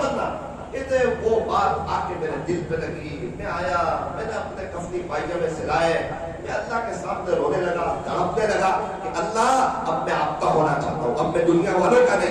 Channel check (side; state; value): both; identical; correlation 1.00